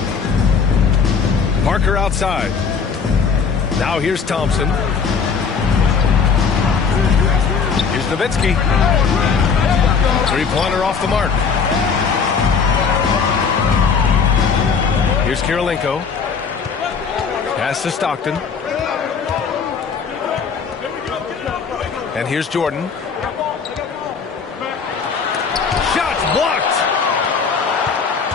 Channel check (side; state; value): right; quieter; 5.8 dB